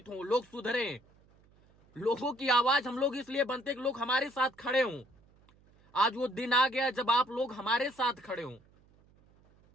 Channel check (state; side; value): noise; right; hum, 30 dB below the sound